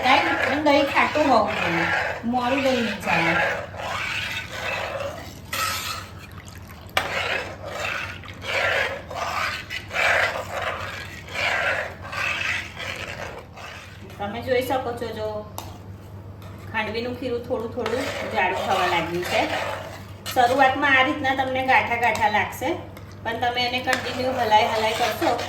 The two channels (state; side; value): identical; both; correlation 1.00